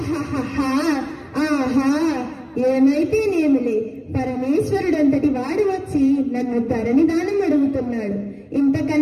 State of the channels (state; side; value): identical; both; correlation 1.00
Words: ఆహా, ఏమైతేనేమిలే, పరమేశ్వరుడంతటి వాడు వచ్చి నన్ను ధరణి దానం అడుగుతున్నాడు.